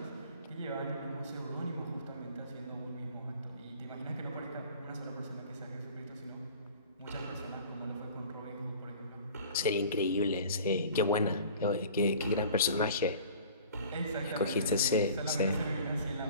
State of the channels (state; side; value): inverted; both; correlation -0.45